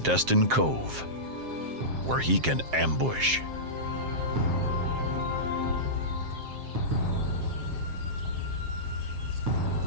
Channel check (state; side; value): late; left; 7.6 ms